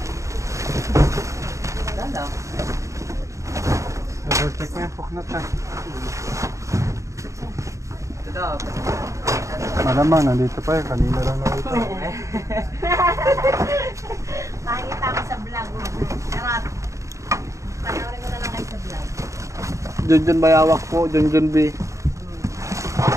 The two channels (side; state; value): left; late; 0.15 ms